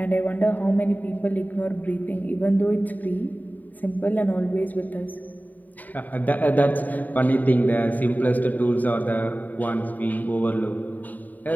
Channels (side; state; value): right; late; 0.083 ms